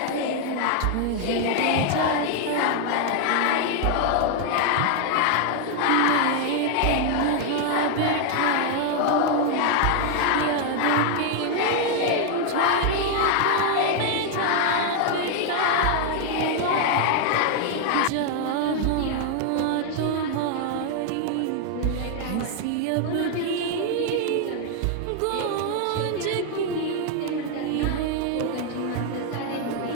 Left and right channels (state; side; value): different; both; correlation 0.00